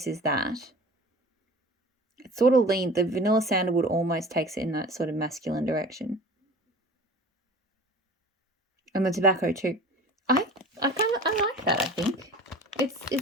is that, it sort of the vanilla sandalwood almost takes it in that sort of masculine direction. And the tobacco too. I like that, I think.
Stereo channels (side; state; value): both; normal; correlation 0.41